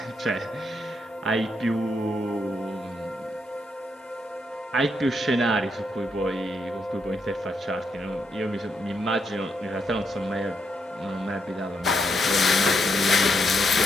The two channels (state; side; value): normal; both; correlation 0.79